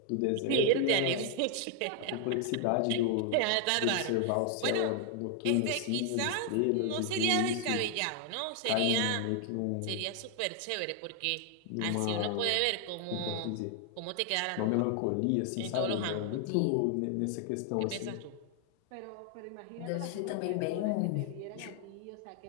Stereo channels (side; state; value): both; different; correlation 0.00